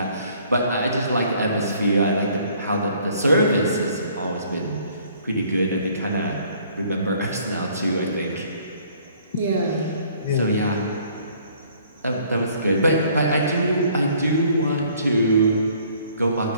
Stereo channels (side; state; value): both; inverted; correlation -0.59